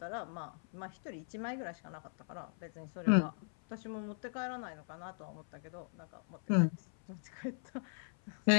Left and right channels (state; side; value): silent; right; 52 dB below the other